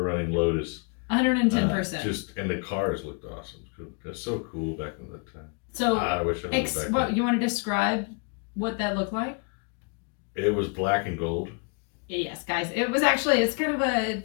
running Lotus. 110%. And the cars looked awesome. That's so cool back in that time. So, I wish I was back what then. you want to describe what that looked like? It was black and gold. Yes, guys. It was actually, it's kind of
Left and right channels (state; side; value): quieter; right; 36.5 dB